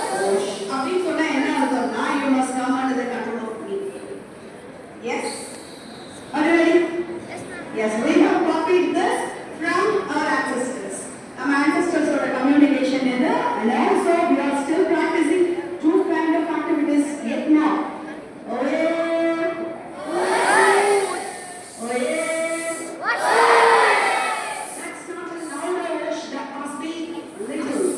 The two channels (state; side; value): identical; both; correlation 1.00